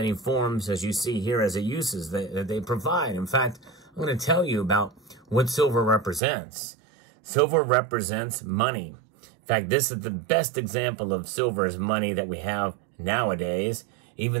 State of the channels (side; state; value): left; drops out; at 6.2 s